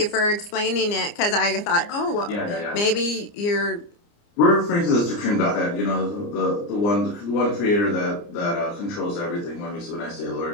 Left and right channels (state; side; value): late; right; 29 ms